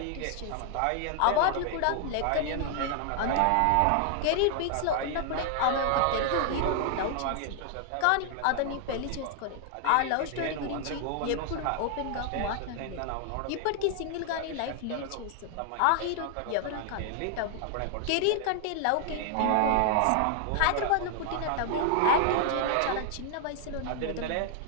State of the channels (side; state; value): both; different; correlation 0.00